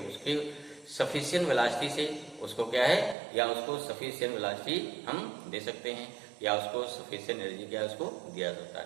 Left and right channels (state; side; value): drops out; left; at 3.2 s